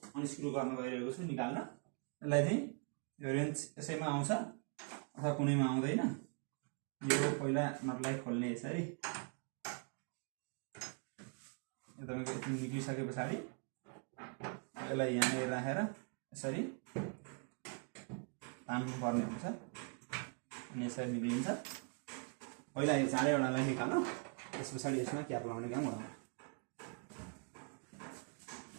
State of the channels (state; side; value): quieter; left; 39.7 dB